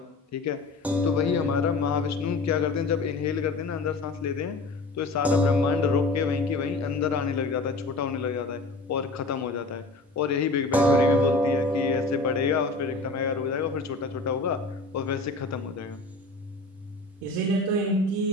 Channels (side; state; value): right; quieter; 3.2 dB